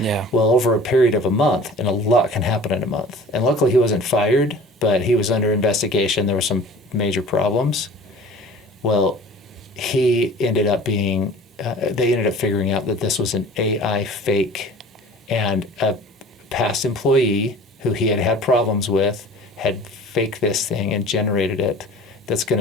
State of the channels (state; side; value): normal; both; correlation 0.44